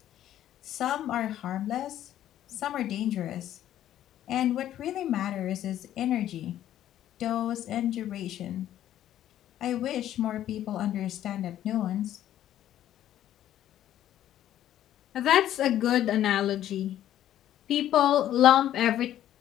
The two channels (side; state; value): right; quieter; 12.0 dB